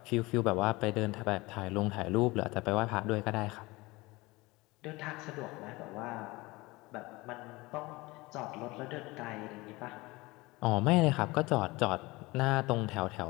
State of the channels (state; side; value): quieter; right; 22.1 dB